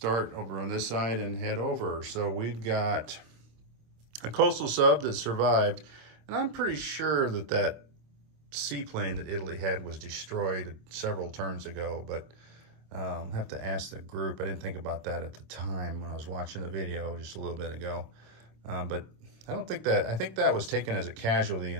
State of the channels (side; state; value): left; late; 26 ms